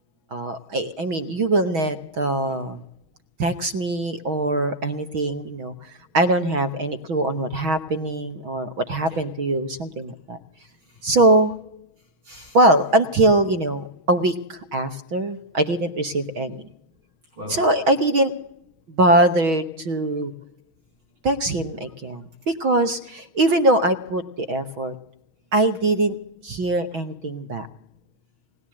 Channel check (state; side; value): late; left; 6.3 ms